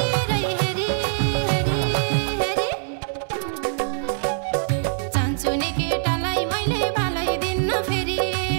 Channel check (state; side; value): silent; left; 60 dB below the other